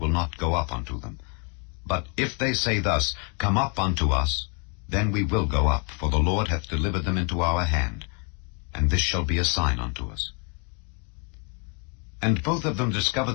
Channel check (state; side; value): quieter; right; 37.2 dB